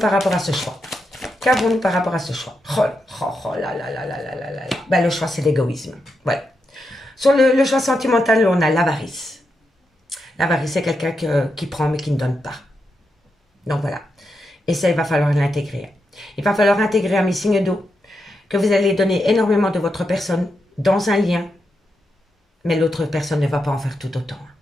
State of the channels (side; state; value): both; normal; correlation 0.85